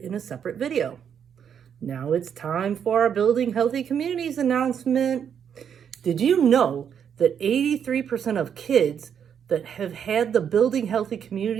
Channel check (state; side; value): quieter; left; 8.1 dB